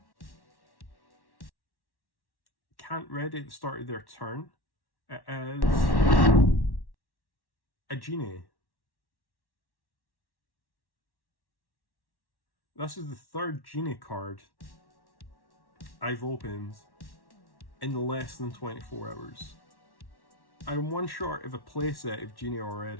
Can't ready at the start of their turn. It is a genie. This is the third genie card I've opened in less than 24 hours. I'm one short of a playset of genie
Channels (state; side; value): late; right; 1.1 ms